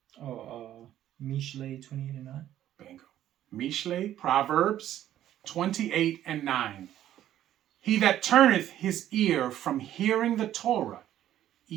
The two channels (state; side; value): quieter; left; 12.1 dB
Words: Mishle 28 and 9. Bingo. Mishle, Proverbs 28 and 9. He that turneth his ear from hearing the Torah,